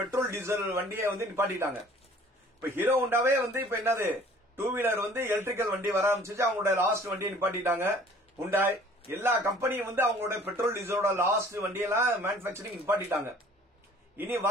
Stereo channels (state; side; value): normal; both; correlation 0.51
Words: டீசல் வண்டியை வந்து நிப்பாட்டிட்டாங்க. இப்ப ஹீரோ ஹோண்டாவே வந்து இப்ப என்னது 2 வீலர் வந்து எலக்ட்ரிக்கல் வண்டி வர ஆரம்பிச்சு, அவங்களோட லாஸ்ட் வண்டியை நிப்பாட்டிட்டாங்க. ஹுண்டாய் எல்லா கம்பெனியும் வந்து அவங்களோட பெட்ரோல் டீசலோட லாஸ்ட் வண்டியெல்லாம் மேனுபேக்சரிங் நிப்பாட்டிட்டாங்க. இனி